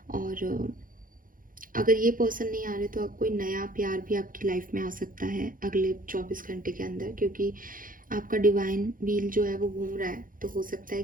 और अगर ये पर्सन नहीं आ रहे तो कोई नया प्यार भी आपकी लाइफ में आ सकता है अगले 24 घंटे के अंदर, क्योंकि आपका डिवाइन व्हील जो है वो घूम रहा है। तो हो सकता है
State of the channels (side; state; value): left; late; 0.40 ms